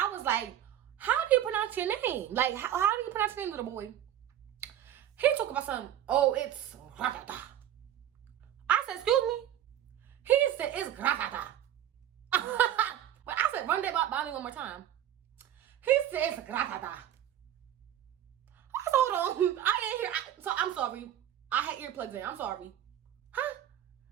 was like, how do you pronounce your name? Like, how do you pronounce your name, little boy? He talk about something. Oh, it's gratata. I said, excuse me? He said, it's gratata. But I said, run that by me one more time. He said, it's gratata. I said, hold on. I ain't hear. So I'm sorry. I had earplugs in. I'm sorry. Huh?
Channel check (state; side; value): quieter; left; 11.2 dB